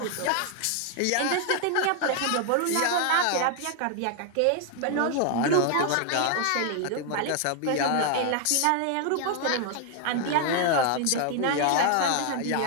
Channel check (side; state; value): both; different; correlation 0.00